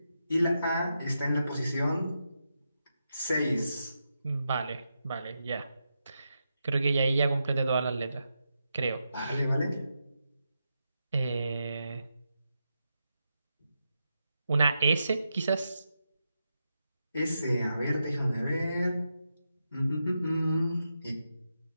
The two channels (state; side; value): inverted; both; correlation -0.86